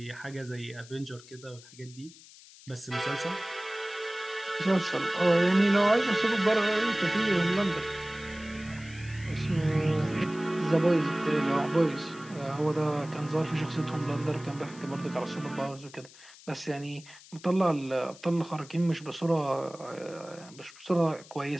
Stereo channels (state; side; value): noise; left; hiss, 21 dB below the sound